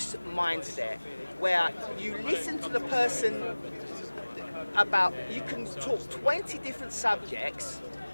mindset where you listen to the person about, you can talk 20 different subjects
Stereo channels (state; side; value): inverted; both; correlation -1.00